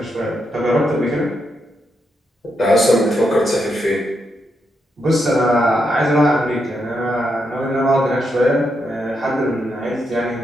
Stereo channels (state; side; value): normal; both; correlation 0.81